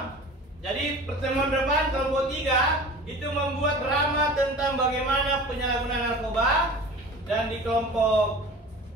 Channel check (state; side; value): normal; both; correlation 0.39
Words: Jadi pertemuan depan kelompok 3 itu membuat drama tentang bagaimana penyalahgunaan narkoba, dan di kelompok